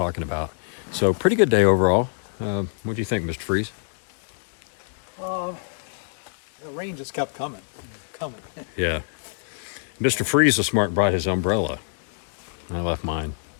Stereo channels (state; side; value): silent; right; digital silence